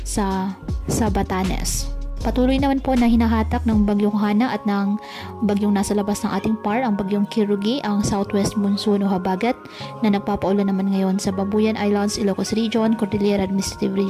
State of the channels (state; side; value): identical; both; correlation 1.00